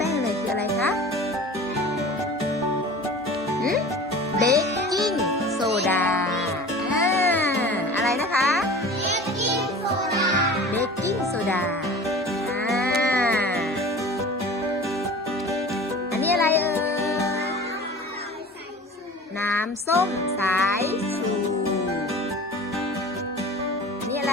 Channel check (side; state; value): both; normal; correlation 0.40